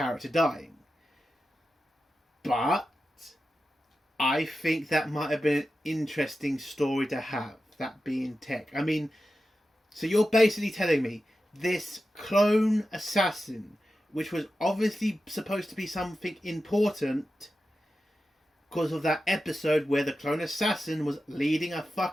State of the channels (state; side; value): normal; both; correlation 0.92